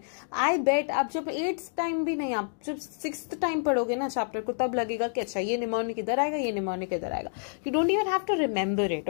I bet आप जब 8th टाइम भी नहीं, आप जब 6th टाइम पढ़ोगे ना चैप्टर को, तब लगेगा कि अच्छा ये निमोनिक इधर आएगा, ये निमोनिक इधर आएगा. You don't even have to remember it.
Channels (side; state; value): right; silent; digital silence